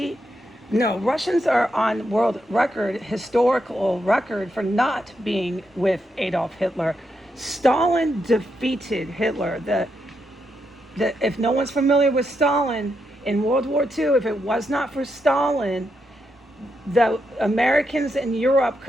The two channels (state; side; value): normal; both; correlation 0.82